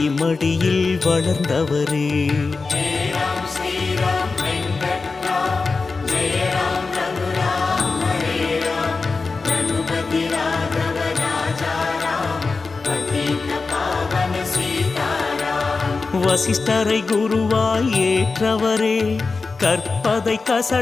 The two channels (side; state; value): right; quieter; 4.2 dB